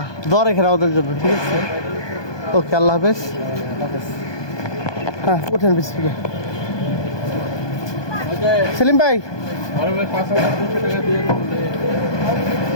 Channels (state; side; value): late; right; 1.2 ms